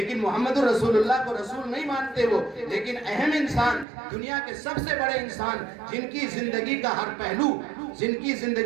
محمد رسول اللہ کو رسول نہیں مانتے وہ، لیکن اہم انسان، دنیا کے سب سے بڑے انسان، جن کی زندگی کا ہر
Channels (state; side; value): drops out; left; at 3.9 s